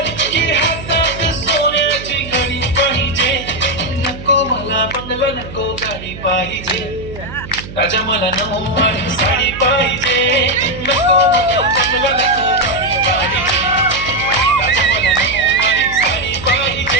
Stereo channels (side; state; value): right; noise; hum, 13 dB below the sound